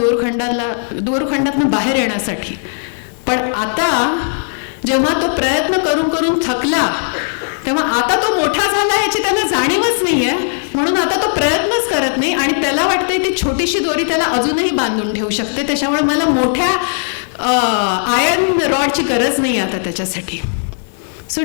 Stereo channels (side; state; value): right; silent; 60 dB below the other